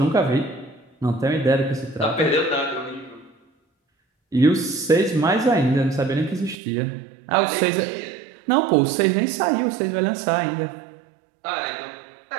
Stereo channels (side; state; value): left; drops out; at 6.6 s